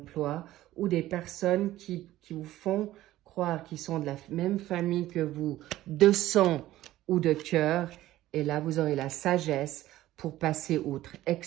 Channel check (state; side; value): quieter; left; 15.1 dB